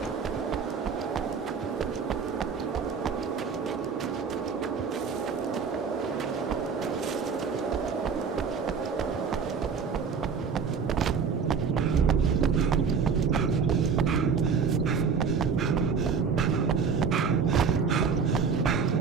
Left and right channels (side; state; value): left; quieter; 5.9 dB